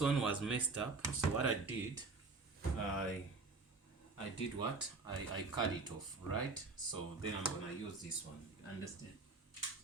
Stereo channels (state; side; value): quieter; left; 3.9 dB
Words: was messed up, so what I did, I did what I cut it off, right? So then I'm going to use this one. Understand?